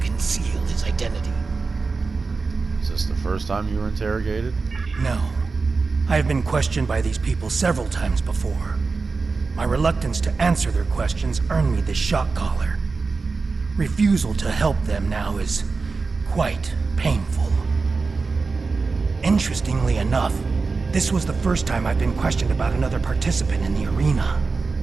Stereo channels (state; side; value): quieter; left; 4.3 dB